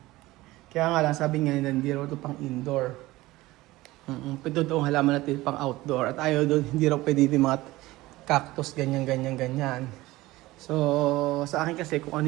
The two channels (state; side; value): quieter; left; 18.6 dB